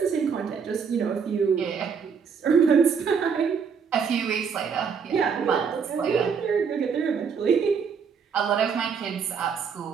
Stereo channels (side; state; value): left; quieter; 6.3 dB